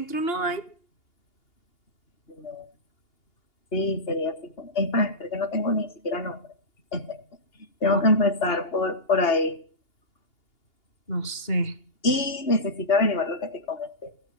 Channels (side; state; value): right; late; 2.8 ms